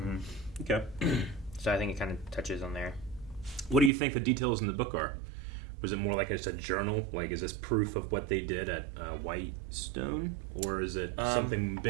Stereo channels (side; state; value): left; drops out; at 3.9 s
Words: Okay. So I think it kind of touches on there. What do you think the details in the book are? Was it more like just a journal? Like, is this proof of what they did at Whitestone? Or is it something